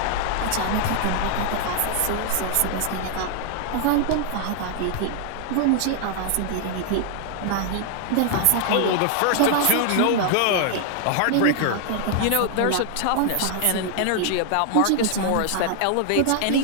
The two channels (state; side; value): different; both; correlation 0.00